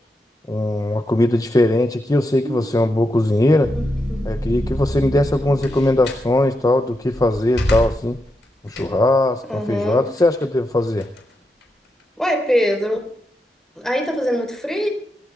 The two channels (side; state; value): both; normal; correlation 0.85